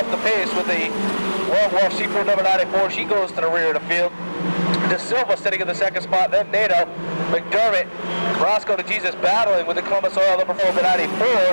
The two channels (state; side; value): inverted; both; correlation -1.00